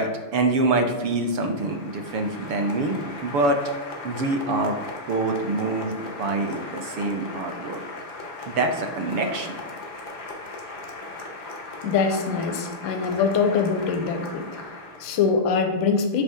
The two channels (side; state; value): left; late; 7.0 ms